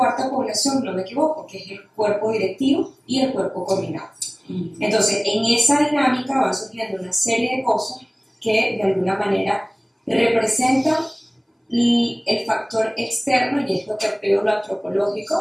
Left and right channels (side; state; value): both; identical; correlation 1.00